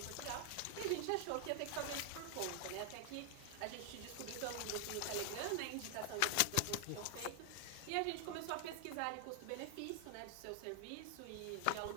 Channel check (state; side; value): different; both; correlation 0.00